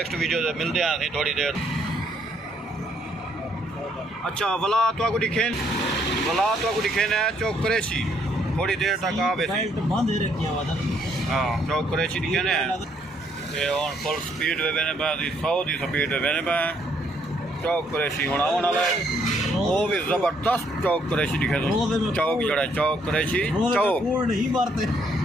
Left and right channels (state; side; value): normal; both; correlation 0.69